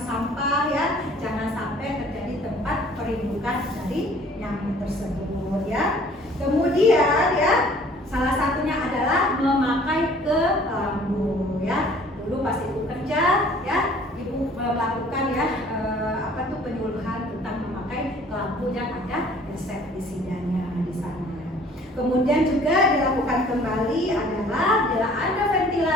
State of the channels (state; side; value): normal; both; correlation 0.54